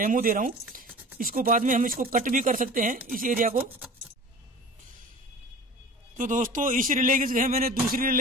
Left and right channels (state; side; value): normal; both; correlation 0.40